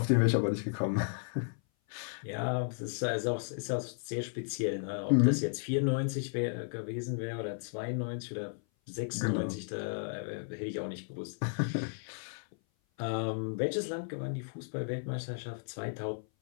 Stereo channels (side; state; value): right; silent; 55 dB below the other